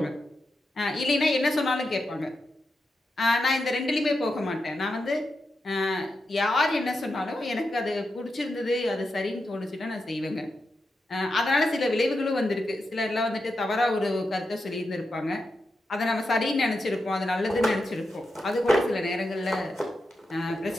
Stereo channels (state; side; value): normal; both; correlation 0.88